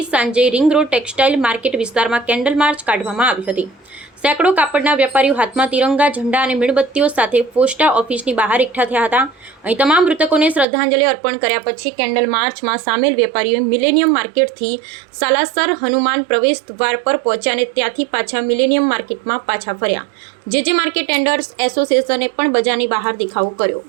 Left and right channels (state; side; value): drops out; left; at 10.7 s